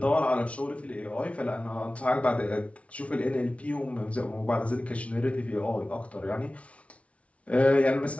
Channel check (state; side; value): late; right; 0.063 ms